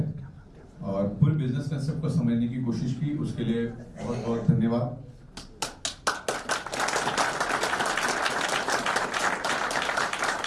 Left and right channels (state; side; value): identical; both; correlation 1.00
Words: और पूरे बिजनेस कंसेप्ट को समझने की कोशिश की, उसके लिए बहुत बहुत धन्यवाद।